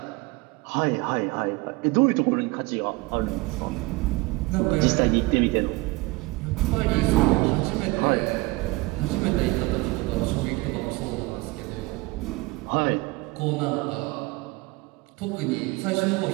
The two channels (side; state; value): left; quieter; 23.1 dB